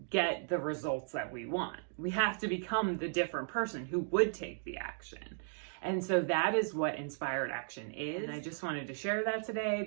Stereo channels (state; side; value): silent; left; digital silence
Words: get the results that we want. We have to become the different person who would take the action. And so that is what inspired action is. And I just wanted to share that today